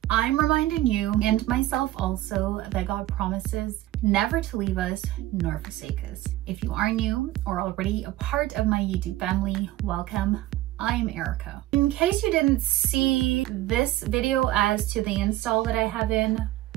I'm reminding you and myself also that God promises never to leave us nor forsake us. If you are new or already a part of my YouTube family, welcome. I'm Erica. In case you didn't see this video as to the install that I have in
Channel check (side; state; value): left; quieter; 15.8 dB